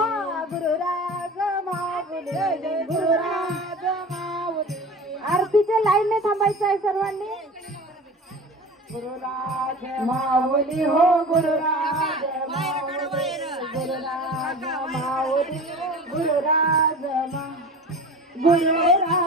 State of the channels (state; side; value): normal; both; correlation 0.36